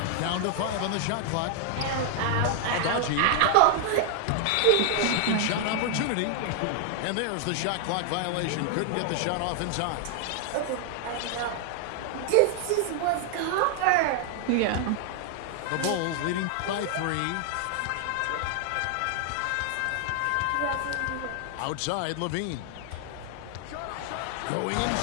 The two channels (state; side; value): different; both; correlation 0.00